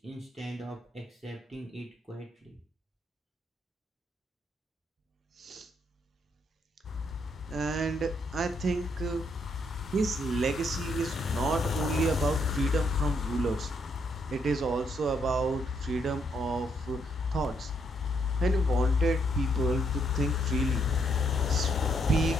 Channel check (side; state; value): both; normal; correlation 0.74